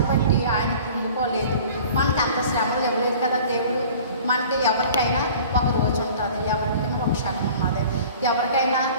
బట్టి ఆయన కృంగిపోలేదు. మనకు అంత శ్రమలు ఇవ్వలేదు కదా దేవుడు. మనకి ఎవరికైనా ఒక రోజు ఉంటుంది, ఎవరికైనా ఒక క్షణం ఉన్నది, ఎవరికైనా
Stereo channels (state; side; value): inverted; both; correlation -0.45